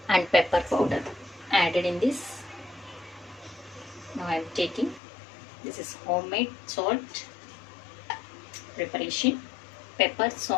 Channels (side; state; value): right; drops out; at 5.0 s